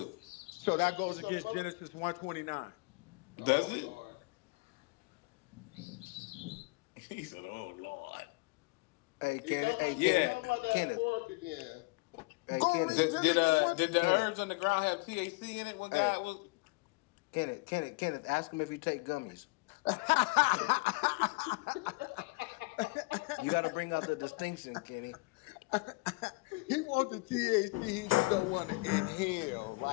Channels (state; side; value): quieter; right; 26.6 dB